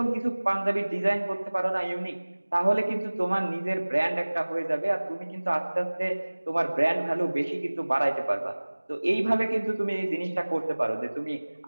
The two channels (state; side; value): inverted; both; correlation -1.00